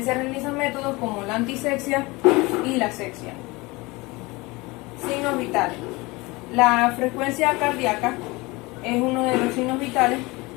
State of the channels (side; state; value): right; quieter; 23.5 dB